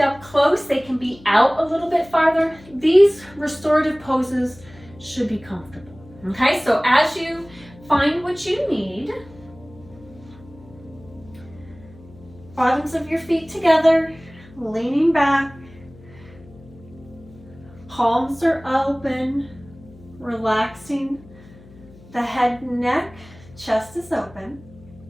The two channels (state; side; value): noise; left; hum, 22 dB below the sound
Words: up close. They can be out a little bit farther. These restorative poses should be comfortable. Okay, so as you find what you need, bottoms of your feet together, leaning back, palms are open, relaxing the head and neck, chest is open.